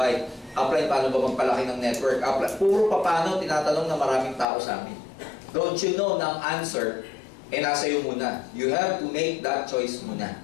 Apply, paano ba magpalaki ng network? Apply, puro paano, tinatanong ng maraming tao sa amin. Don't you know na ang answer, nasa iyo muna. You have to make that choice muna.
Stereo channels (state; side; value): drops out; right; at 4.5 s